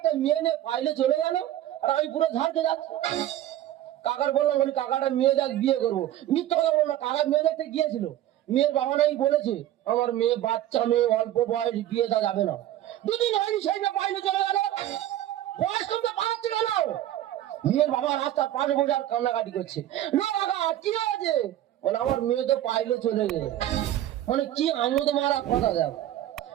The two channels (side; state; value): left; quieter; 12.9 dB